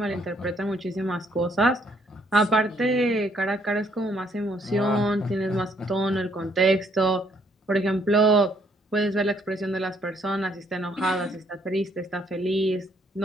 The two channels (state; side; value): normal; both; correlation 0.68